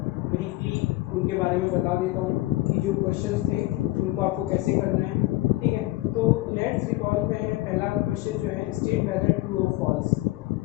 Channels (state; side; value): quieter; right; 18.7 dB